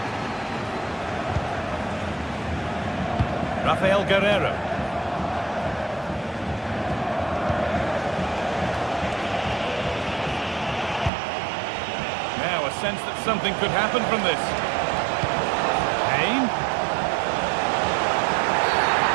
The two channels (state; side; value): drops out; left; at 11.1 s